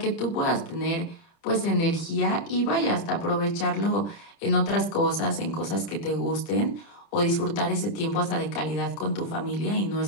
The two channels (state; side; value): late; right; 30 ms